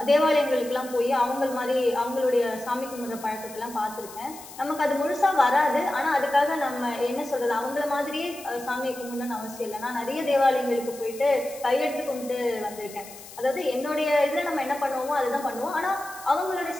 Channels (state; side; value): noise; left; hiss, 17 dB below the sound